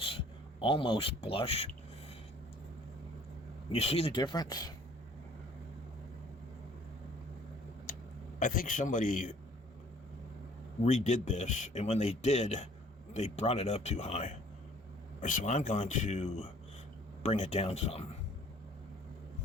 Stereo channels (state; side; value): normal; both; correlation 0.55